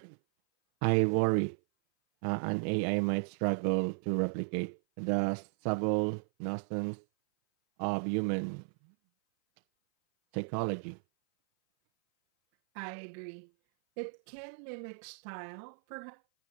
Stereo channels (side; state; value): left; silent; 55 dB below the other